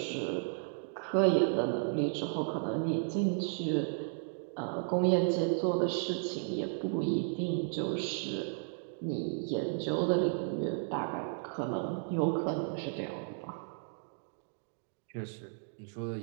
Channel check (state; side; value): silent; left; digital silence